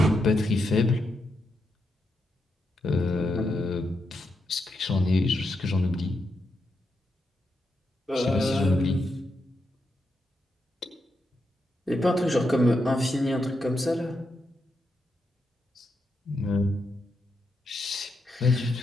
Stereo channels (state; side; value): normal; both; correlation 0.84